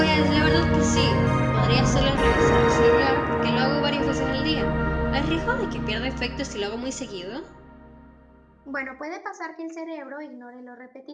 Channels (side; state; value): both; identical; correlation 1.00